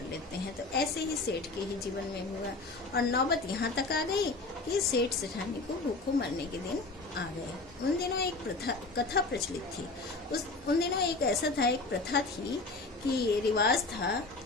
लेते हैं। तो ऐसे ही सेठ के ही जीवन में हुआ और नौबत यहाँ तक आ गई कि सेठ सेठानी को भूखों मरने के दिन आ गए। उन दिनों एक कथा प्रचलित थी। उन दिनों एक ऐसा था, एक प्रथा थी कि रिवाज था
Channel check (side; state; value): right; quieter; 3.5 dB